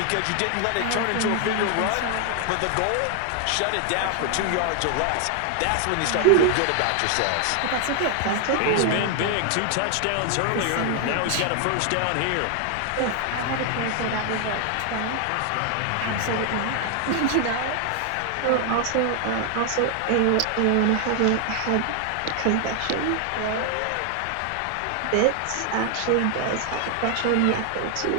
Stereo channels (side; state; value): both; different; correlation 0.00